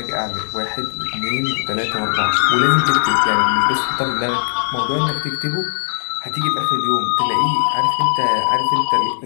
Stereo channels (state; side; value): silent; right; digital silence